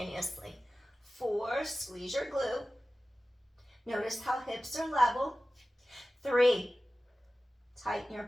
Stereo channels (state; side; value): normal; both; correlation 0.95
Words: 4, squeeze your glute. Notice how hips are level. 3, tighten your